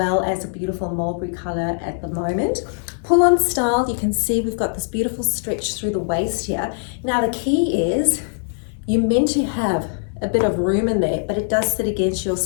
as a beautiful mulberry color at the moment. Pull on style, you can see we've got this beautiful stretch through the waist here. Now the key is you're meant to have a bit of room in there, but it does sit against your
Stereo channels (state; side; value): silent; right; 65 dB below the other